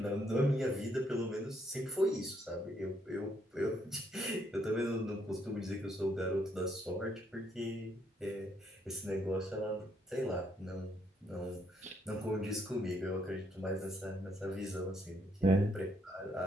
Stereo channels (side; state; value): both; normal; correlation 0.72